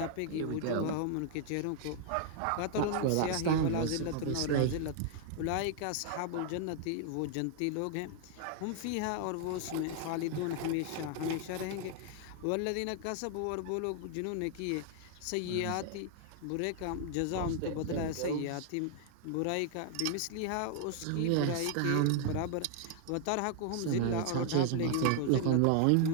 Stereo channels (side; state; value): both; different; correlation 0.00